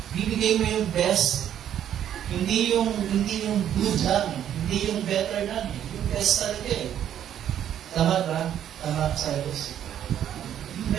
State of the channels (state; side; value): quieter; left; 10.3 dB